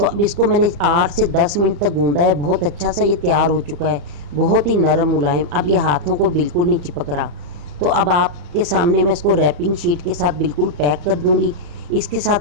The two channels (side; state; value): left; late; 34 ms